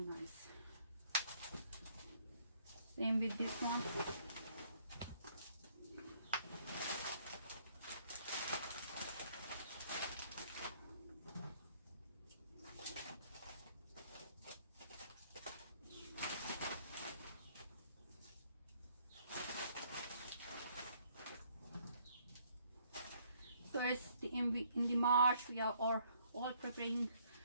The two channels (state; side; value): inverted; both; correlation -0.65